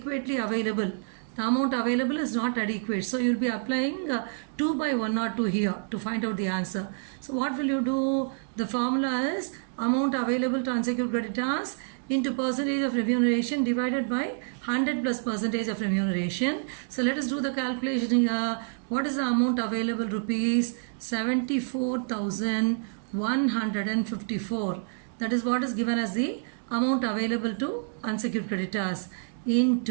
available. The amount available is not adequate. So you will be applying 2 by 1 or 2 here to find out the answer. So what will you do? The formula is amount available to unsecured creditors into percentage of remuneration divided by 100 plus percentage of remuneration. So let us do the calculation here. What is the amount available? Rupees 74,154. That is what is given as the amount available to unsecured creditors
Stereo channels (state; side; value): silent; left; digital silence